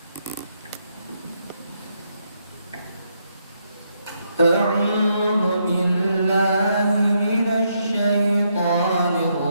أعوذ بالله من الشيطان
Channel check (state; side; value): inverted; both; correlation -0.77